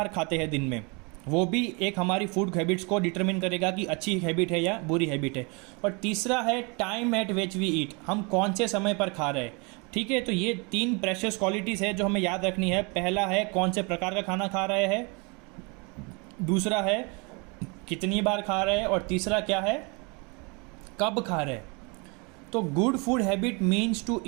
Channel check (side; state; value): left; quieter; 30.8 dB